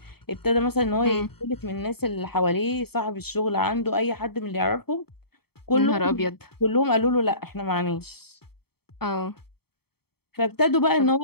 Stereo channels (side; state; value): right; late; 0.96 ms